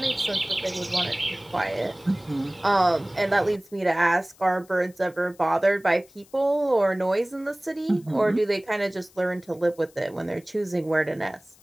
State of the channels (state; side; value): noise; left; hiss, 28 dB below the sound